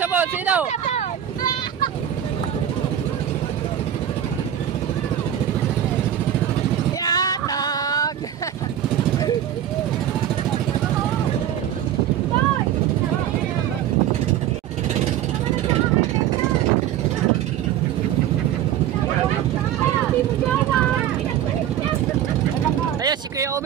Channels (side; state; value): left; quieter; 10.7 dB